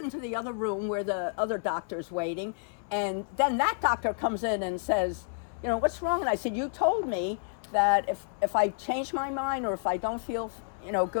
the other room where the other doctor's waiting, and then that doctor comes in and says, what's wrong? And I said, you told me that if I change my mind or if I don't feel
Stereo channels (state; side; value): silent; right; 58 dB below the other